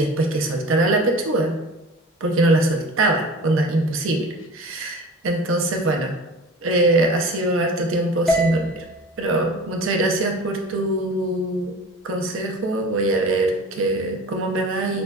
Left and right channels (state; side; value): normal; both; correlation 0.38